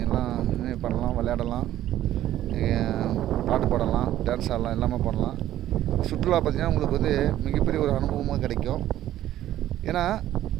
எல்லாம் பண்ணலாம், விளையாடலாம், பாட்டு பாடலாம், டான்ஸ் ஆடலாம், எல்லாமே பண்ணலாம். சுற்றுலா பார்த்திங்கன்னா உங்களுக்கு மிகப்பெரிய ஒரு அனுபவமாக கிடைக்கும். ஏன்னா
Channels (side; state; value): left; quieter; 13.1 dB